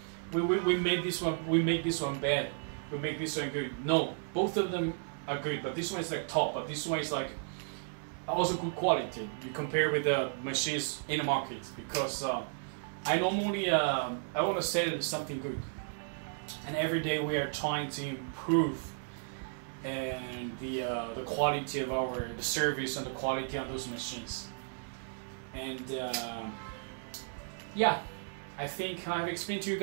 we make this one bad. We make this one good. No, both of them are good, but this one is like top, but this one is like also good quality. You compare with the machines in the market, because I normally I want to sell something good, and every day we are trying to improve and the quality of the service and the quality on those machines. And yeah, I think I've explained to you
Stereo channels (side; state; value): left; silent; digital silence